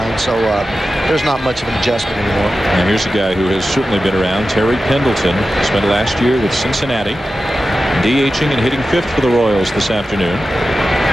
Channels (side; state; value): both; normal; correlation 0.93